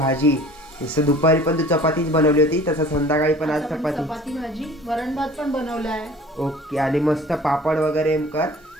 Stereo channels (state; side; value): normal; both; correlation 0.46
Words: जसं दुपारी पण तू चपातीच बनवली होती, तसं संध्याकाळी पण आज चपाती भाजी, वरण भात पण बनवला आहे. ओके. आणि मस्त पापड वगैरे कर,